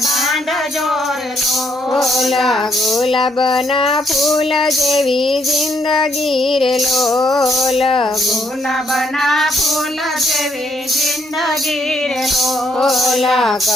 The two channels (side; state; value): both; normal; correlation 0.74